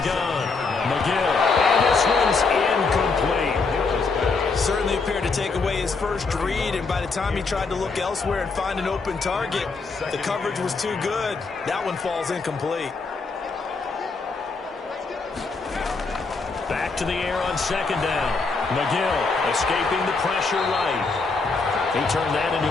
gun, McGill, and this one's incomplete. Certainly appeared to take away his first read, and by the time he tried to look elsewhere and find an open target, the coverage was too good. That one falls incomplete. Back to the air on 2nd down. McGill escaping the pressure right. He turned that into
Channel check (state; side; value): quieter; right; 4.3 dB